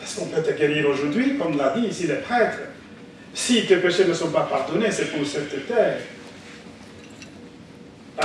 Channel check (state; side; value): identical; both; correlation 1.00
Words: qu'on peut te guérir aujourd'hui, comme l'a dit ici le prêtre. Si tes péchés ne sont pas pardonnés, c'est pour cette terre.